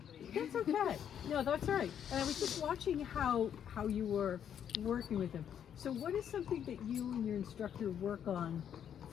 That's okay. No, that's all right. And I was just watching how you were working with him. So what is something that you and your instructor work on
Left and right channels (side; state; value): right; quieter; 9.0 dB